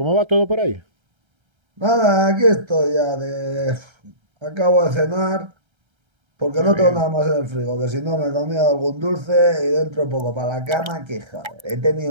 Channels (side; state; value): left; late; 1.3 ms